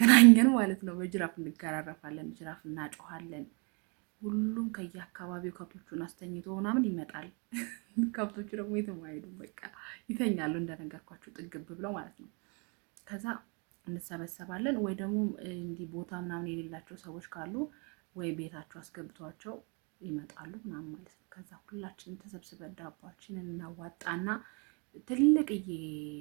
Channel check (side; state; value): left; quieter; 34.0 dB